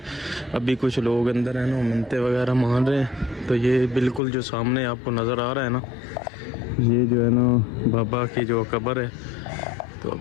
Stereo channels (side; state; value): right; drops out; at 4.2 s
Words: अभी कुछ लोग अंदर हैं ना मनते वगैरह मान रहे हैं। तो ये बिल्कुल जो सामने आपको नज़र आ रहा है ना, ये जो है ना बाबा की जो कब्र है। तो